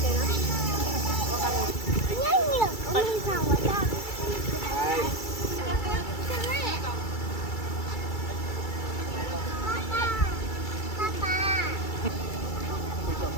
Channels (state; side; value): late; right; 2.3 ms